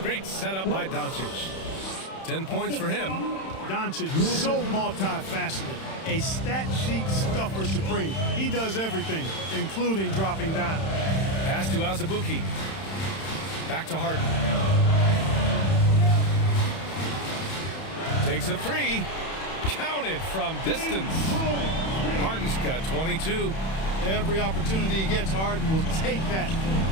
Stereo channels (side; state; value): right; late; 31 ms